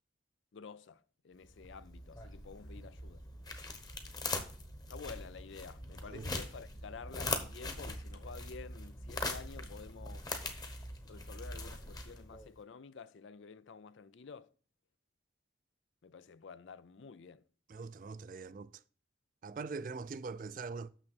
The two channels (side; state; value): both; normal; correlation 0.32